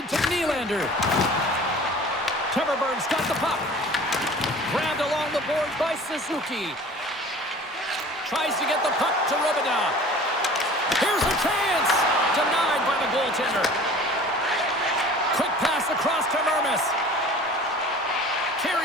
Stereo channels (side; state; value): both; normal; correlation 0.44